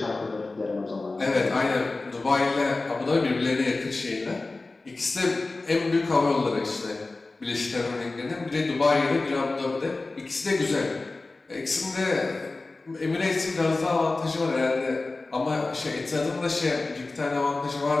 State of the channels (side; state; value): right; quieter; 3.4 dB